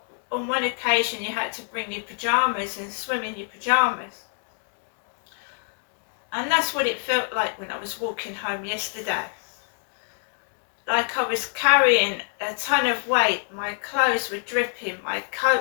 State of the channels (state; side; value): silent; right; 61 dB below the other